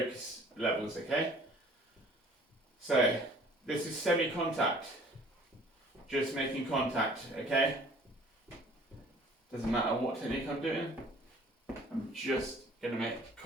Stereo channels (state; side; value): normal; both; correlation 0.53